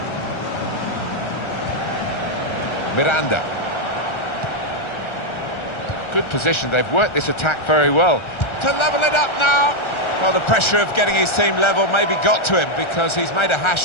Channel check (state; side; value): late; right; 1.3 ms